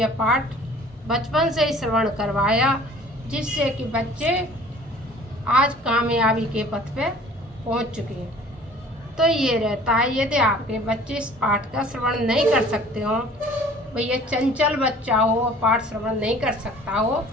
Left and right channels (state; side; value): normal; both; correlation 0.50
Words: पाठ बचपन से ही श्रवण करवाया, जिससे कि बच्चे आज कामयाबी के पथ पे पहुंच चुके हैं। तो ये रहता है, यदि आपके बच्चे इस पाठ का श्रवण नहीं कर सकते हो, भैया चंचल बच्चा हो और पाठ श्रवण नहीं कर सकता हो,